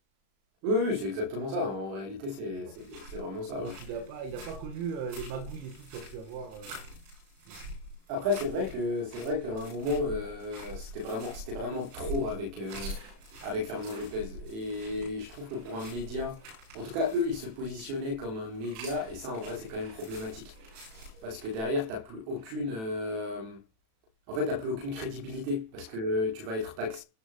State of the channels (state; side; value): late; left; 36 ms